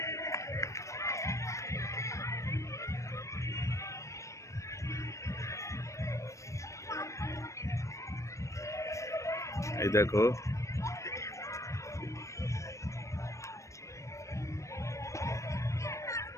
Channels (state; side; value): late; right; 0.15 ms